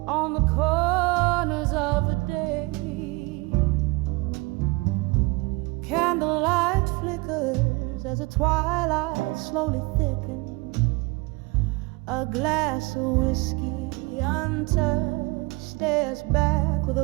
on the corners of the day, candlelight flickers as the twilight slowly thickens. A glass of whiskey untouched stares back with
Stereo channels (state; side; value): quieter; left; 24.9 dB